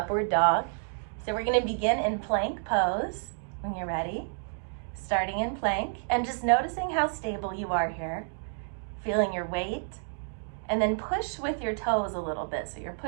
dog. So we're going to begin in plank pose when you're ready. Starting in plank and just noticing how stable you are here. Feeling your weight. And then push with your toes a little bit. So you're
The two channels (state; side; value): silent; left; digital silence